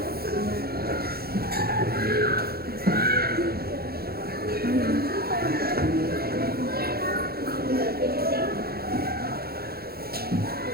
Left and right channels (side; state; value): left; late; 0.45 ms